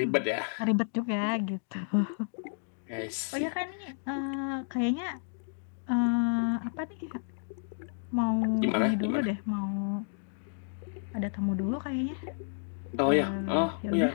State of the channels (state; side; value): silent; right; digital silence